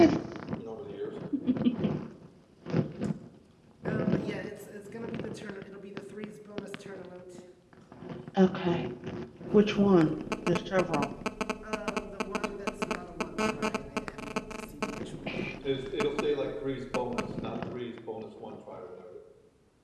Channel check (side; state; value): both; identical; correlation 1.00